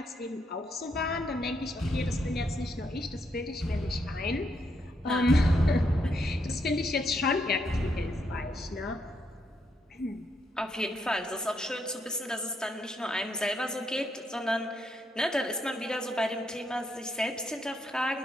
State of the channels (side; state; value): both; normal; correlation 0.77